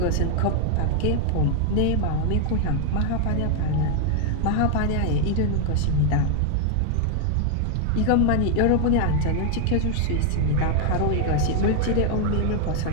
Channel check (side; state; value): both; different; correlation 0.00